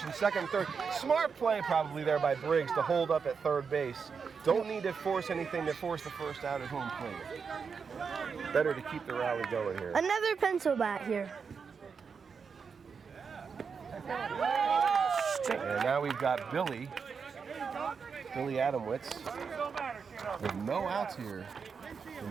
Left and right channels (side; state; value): left; quieter; 5.8 dB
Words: second and third. Smart play probably there by Briggs to hold up at third base. Don't need to force anything to force the first out at home plate. Better to keep the rally going here. Another pencil bat here. And now we've got Billy Adamwitz with no outs here in